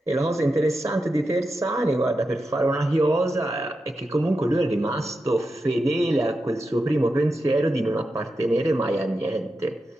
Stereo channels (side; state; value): both; normal; correlation 0.89